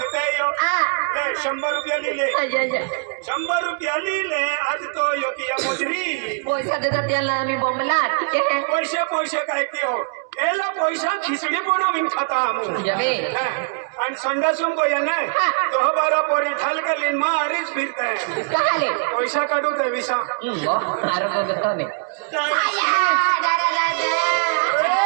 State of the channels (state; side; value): quieter; left; 38.6 dB